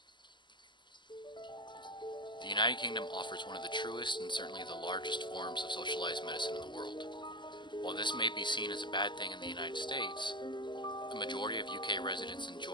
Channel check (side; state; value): right; late; 0.22 ms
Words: The United Kingdom offers one of the truest and certainly the largest forms of socialized medicine in the world. While this may be seen as a bad thing in the United States, the majority of UK residents